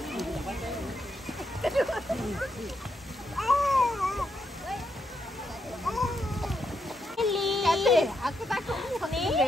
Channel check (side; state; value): both; normal; correlation 0.81